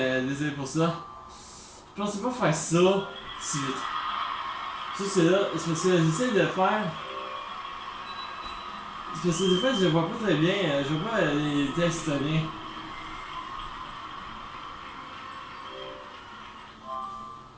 désolé pour ça. Je pensais pas faire ça si vite. Ça c'est là, c'est parce que j'essaie de faire. C'est parce que des fois je vois pas très bien, je vois pas les textes très bien.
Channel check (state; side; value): identical; both; correlation 1.00